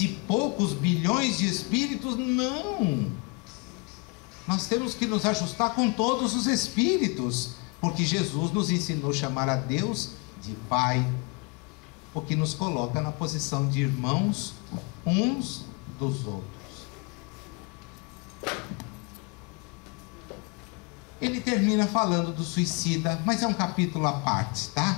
e poucos bilhões de espíritos? Não! Nós temos que nos ajustar com todos os espíritos, porque Jesus nos ensinou a chamar a Deus de Pai, o que nos coloca na posição de irmãos uns dos outros. Ele termina falando do suicida, mas é um capítulo à parte,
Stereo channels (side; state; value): right; quieter; 29.3 dB